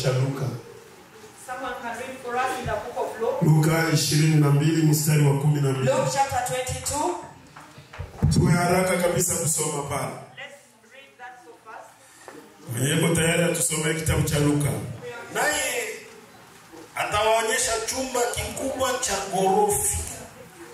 Luka. Someone can read for us in the book of Luke. Luka 22 mstari wa 12. Luke chapter 22. Tuwe haraka kabisa kusoma pale. Let's read that so fast. Hebu tayari tusomee kitabu cha Luka. Naye atawaonyesha chumba kikubwa cha ghorofa.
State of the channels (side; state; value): both; identical; correlation 1.00